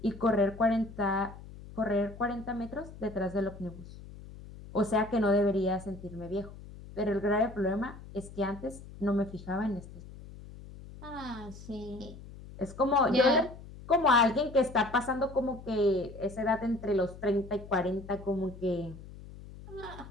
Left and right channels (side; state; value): left; noise; hum, 16 dB below the sound